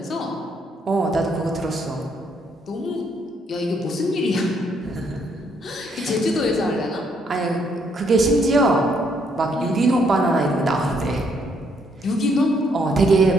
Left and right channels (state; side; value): normal; both; correlation 0.71